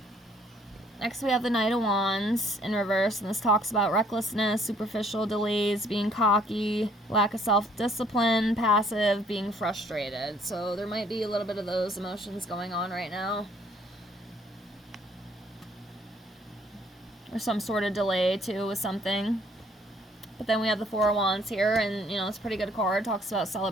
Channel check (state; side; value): normal; both; correlation 0.62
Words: Next we have the Knight of Wands in reverse. And this talks about recklessness, superficial delays, being cocky, lack of self-discipline, passive, being frustrated. So there might be a little bit of those emotions going on right now. Or some sort of delay, too, with something. But then we have the Four of Wands here, and, you know, it's a pretty good card. It talks about